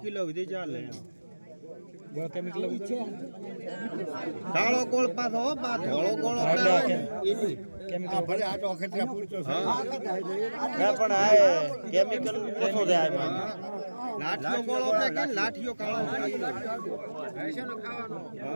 કિલો સુધી ચાલે. કાળો ગોળ પાછો હો બા ધોળો ગોળ એની ભલે આ તો અખતરા પૂરતો છે. પણ આ કેમિકલ ઓછો છે આમાં. લાઠીઓ ગોળ આપણે કે લાઠીઓ કાળો 1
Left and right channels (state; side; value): inverted; both; correlation -1.00